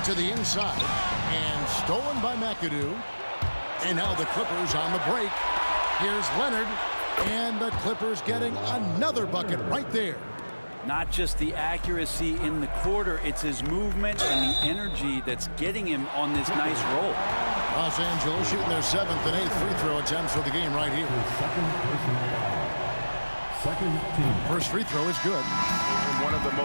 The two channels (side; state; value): both; inverted; correlation -1.00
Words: To the inside. And stolen by McCadoo. And now the Clippers on the break. Here's Leonard. And the Clippers getting another bucket right there. Not just the accuracy in the quarter, it's his movement and the energy that's getting him on this nice roll. Los Angeles shooting their 7th and 8th free throw attempts for the game right here. Second team. First free throw is good. One of the